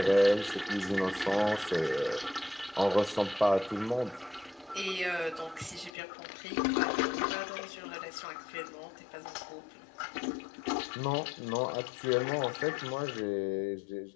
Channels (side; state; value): right; drops out; at 5.9 s